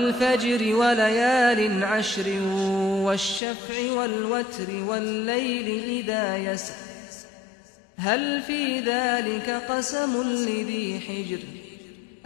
وليال عشر والشفع والوتر والليل إذا يسر هل في ذلك قسم لذي حجر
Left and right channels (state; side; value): drops out; right; at 3.4 s